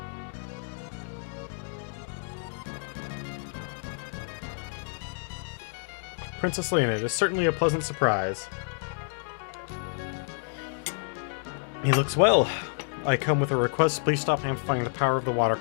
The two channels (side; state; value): right; silent; 59 dB below the other